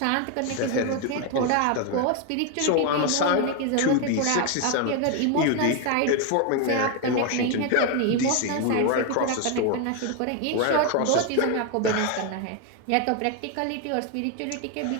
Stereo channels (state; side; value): different; both; correlation 0.01